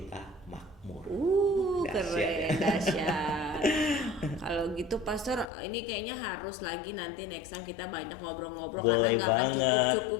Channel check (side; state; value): right; drops out; at 5.5 s